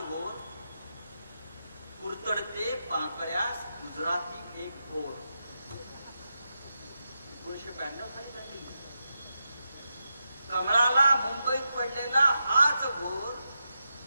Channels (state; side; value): inverted; both; correlation -0.87